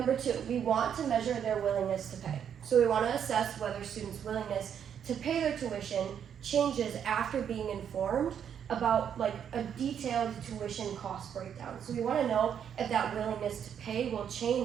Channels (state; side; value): quieter; left; 8.5 dB